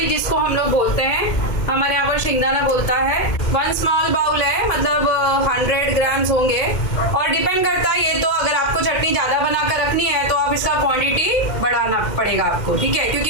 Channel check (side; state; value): right; late; 2.1 ms